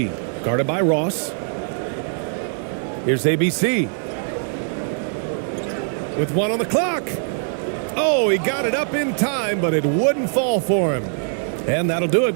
guarded by Ross. Here's ABC. With 1 on the clock. Oh, he got it up in time, but it wouldn't fall for him. And that'll do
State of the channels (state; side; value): silent; left; 61 dB below the other